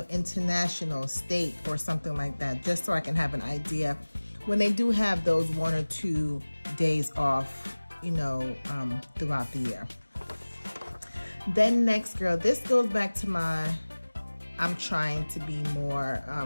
international, state, or something like that, just so I can have an idea when they do have those 1 or 2 days off, you know, throughout the year. Then next, girl, this goes back to my, I'm trying to be more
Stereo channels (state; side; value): inverted; both; correlation -1.00